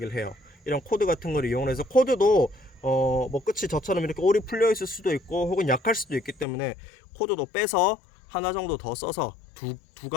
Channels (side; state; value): right; drops out; at 6.5 s